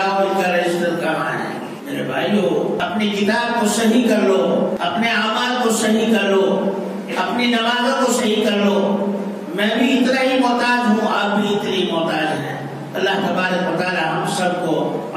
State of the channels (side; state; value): both; identical; correlation 1.00